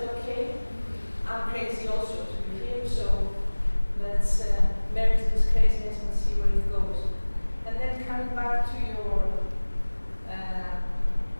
okay, I'm crazy also to be here, so let's merit this craziness and see where it goes. And then coming back to your,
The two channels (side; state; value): both; inverted; correlation -1.00